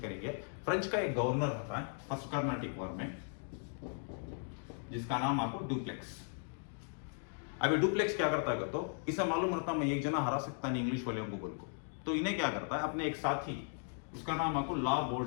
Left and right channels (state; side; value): silent; right; 53 dB below the other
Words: करेंगे। फ्रेंच का एक गवर्नर रहता है फर्स्ट कार्नाटिक वॉर में, जिसका नाम आपको डुप्लेक्स। अभी डुप्लेक्स क्या करता है तो इसे मालूम रहता मैं एक जना हरा सकता नहीं इंग्लिश वाले को बोल को, तो इन्हें क्या करता है अपने एक साथी, उसका नाम आपको ला